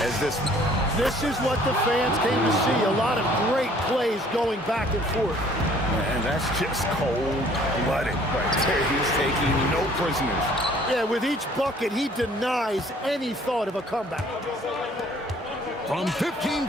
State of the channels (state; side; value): normal; both; correlation 0.57